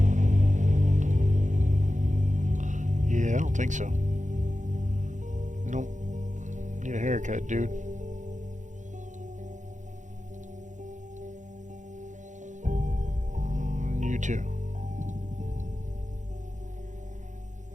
Yeah, I don't think so. Nope. Need a haircut, dude. You too.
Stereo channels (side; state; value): left; late; 0.36 ms